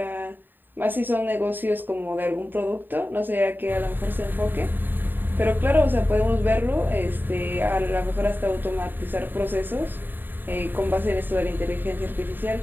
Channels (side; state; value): left; late; 0.092 ms